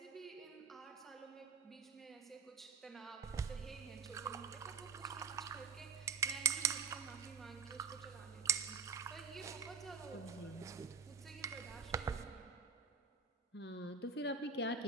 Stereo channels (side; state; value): left; quieter; 5.6 dB